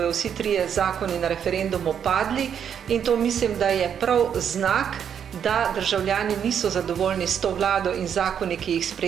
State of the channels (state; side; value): quieter; left; 8.2 dB